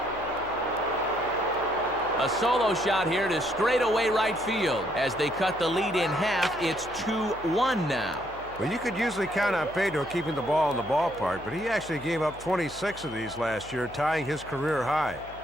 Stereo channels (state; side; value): noise; left; hum, 19 dB below the sound